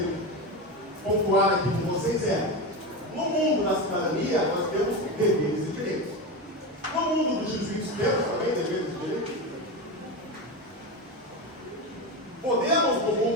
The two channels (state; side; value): normal; both; correlation 0.19